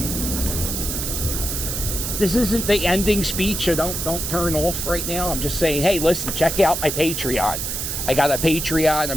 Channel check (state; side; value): noise; right; hiss, 3 dB below the sound